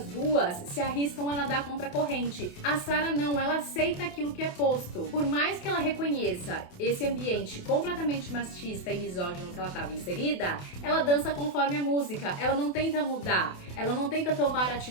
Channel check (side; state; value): right; late; 28 ms